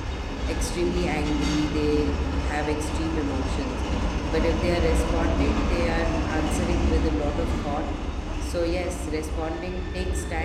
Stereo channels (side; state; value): both; identical; correlation 1.00